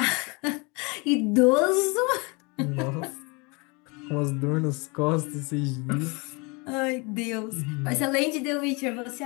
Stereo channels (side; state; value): right; quieter; 29.0 dB